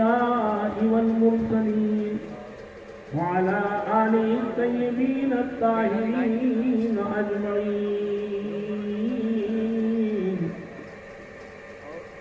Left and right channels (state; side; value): identical; both; correlation 1.00